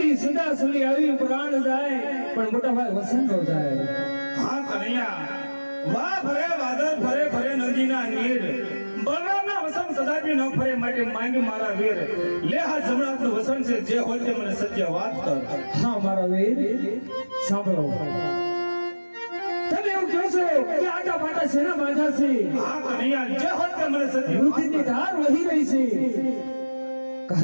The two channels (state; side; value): inverted; both; correlation -1.00